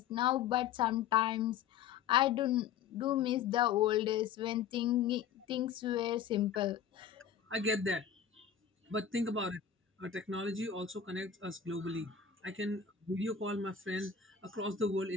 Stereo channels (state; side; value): quieter; right; 7.7 dB